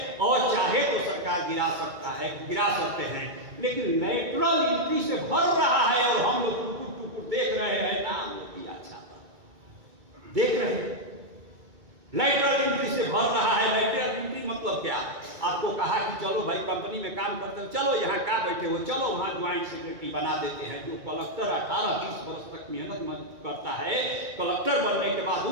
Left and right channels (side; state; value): left; late; 2.2 ms